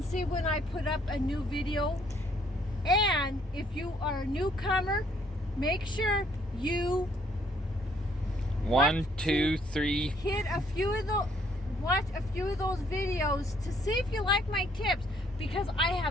see when I put up a new video. And if you are a newcomer, make sure you hit a few of the watch a few of those videos to see if you like my tips, because I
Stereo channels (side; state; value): both; normal; correlation 0.66